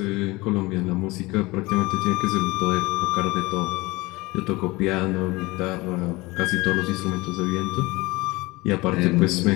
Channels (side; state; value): right; quieter; 22.1 dB